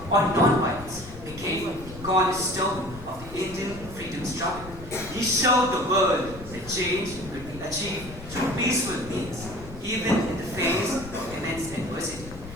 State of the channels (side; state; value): left; noise; rumble, 14 dB below the sound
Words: or non-violence became the cornerstone of the Indian freedom struggle. He showed the world that change could be achieved through peaceful means, even in the face of immense adversity.